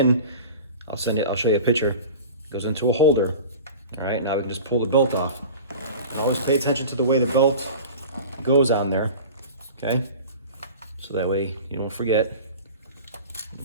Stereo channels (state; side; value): inverted; both; correlation -0.37